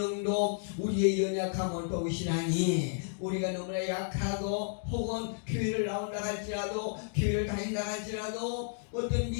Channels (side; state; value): right; silent; digital silence